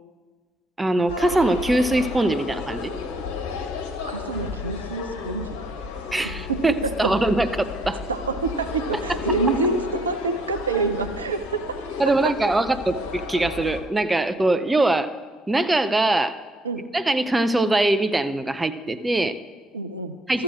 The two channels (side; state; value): both; normal; correlation 0.65